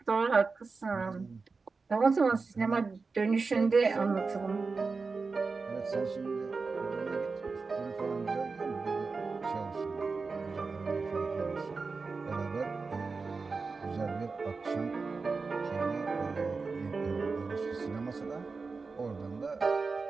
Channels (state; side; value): quieter; left; 4.4 dB